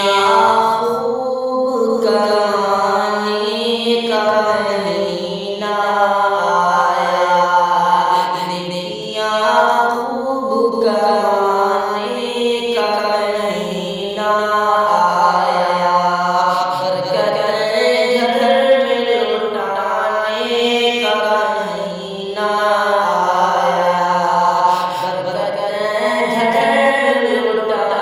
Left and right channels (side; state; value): both; identical; correlation 1.00